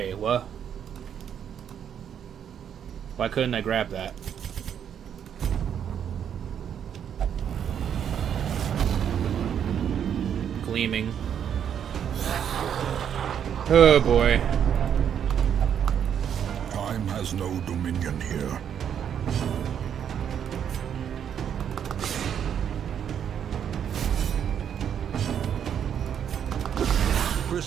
what? Why couldn't I grab that? Gleaming. Oh boy. Time has no dominion here.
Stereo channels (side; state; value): left; quieter; 8.7 dB